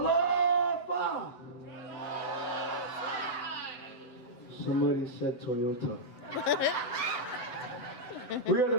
Somebody said Toyota. We are the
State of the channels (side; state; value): right; late; 8.0 ms